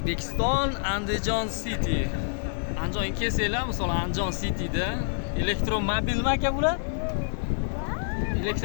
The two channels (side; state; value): right; silent; digital silence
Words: Andijon City. Andijonga kelsanglar, misol Andijon Cityda elektromobilmi aka bular?